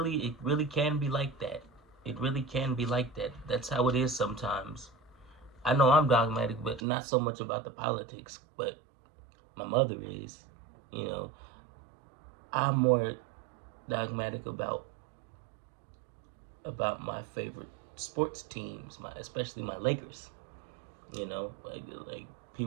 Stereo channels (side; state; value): left; drops out; at 6.8 s